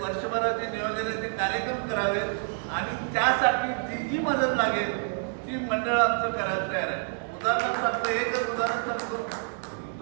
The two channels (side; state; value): left; silent; 59 dB below the other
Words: वर्षभराचे नियोजनाचे कार्यक्रम करावेत आणि त्यासाठी जी जी मदत लागेल ती मंडळ आमचं करायला तयार आहे. उदाहरण सांगतो, एकच उदाहरण सांगतो.